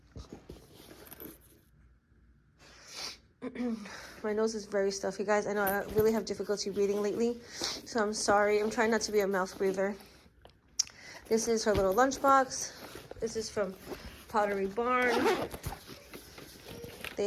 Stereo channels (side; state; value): both; identical; correlation 1.00